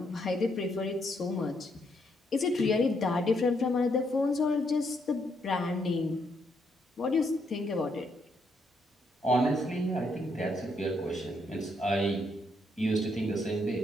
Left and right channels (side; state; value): both; normal; correlation 0.75